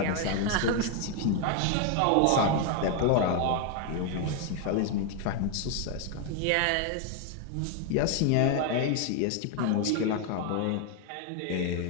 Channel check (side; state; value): both; different; correlation 0.01